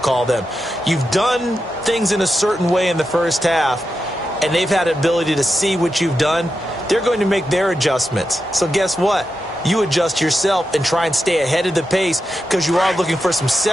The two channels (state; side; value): normal; both; correlation 0.88